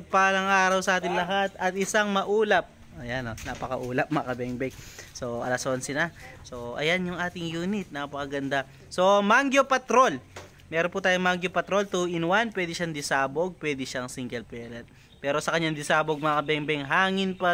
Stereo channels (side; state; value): both; identical; correlation 1.00